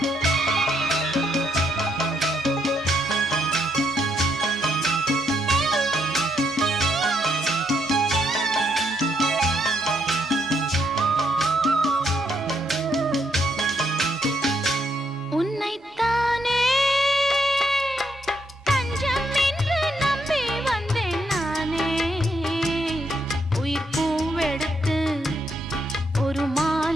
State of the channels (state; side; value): normal; both; correlation 0.76